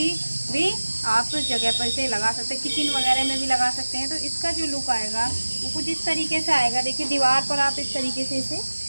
भी आप जगह पर इसे लगा सकते हैं। किचन वगैरह में भी लगा सकते हैं। तो इसका जो लुक आएगा वो कुछ इस तरीके से आएगा। देखिए दीवार पर आप इस तरीके से इसे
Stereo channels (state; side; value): inverted; both; correlation -1.00